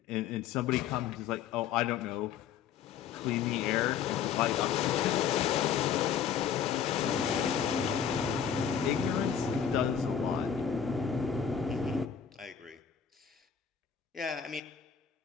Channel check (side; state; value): right; quieter; 8.0 dB